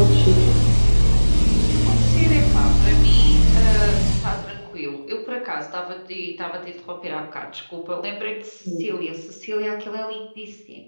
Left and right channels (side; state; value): both; inverted; correlation -1.00